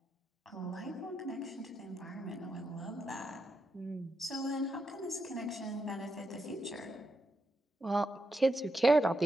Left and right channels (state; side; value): normal; both; correlation 0.84